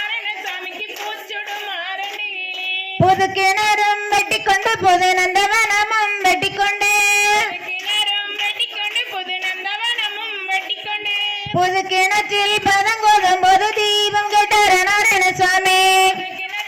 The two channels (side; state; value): both; identical; correlation 1.00